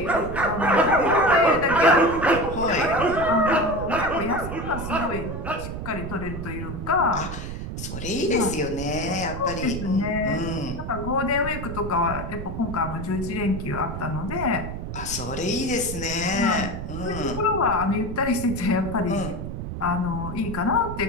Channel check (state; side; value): noise; right; rumble, 7 dB below the sound